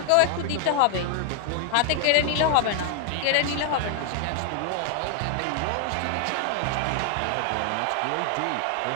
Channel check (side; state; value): both; different; correlation 0.00